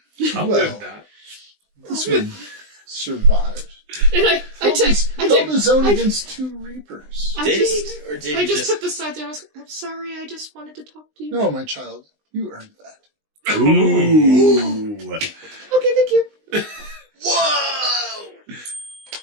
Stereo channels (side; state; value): left; late; 20 ms